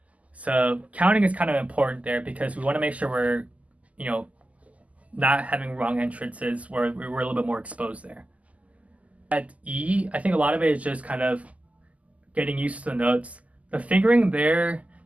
So counting is kind of important there because we want to make sure we're, not having wrong entrances where we're a little bit more exposed there. At E, I think a lot of it is just kind of getting used to the notes. The fingering there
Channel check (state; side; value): late; left; 0.071 ms